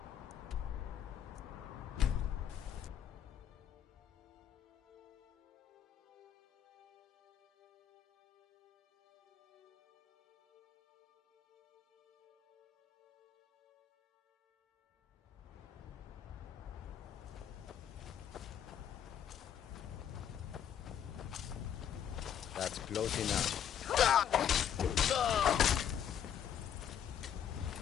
That's close enough.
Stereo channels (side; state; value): right; quieter; 9.2 dB